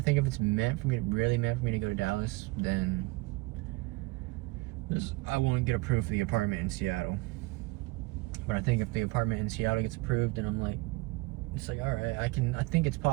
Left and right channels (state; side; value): quieter; left; 23.3 dB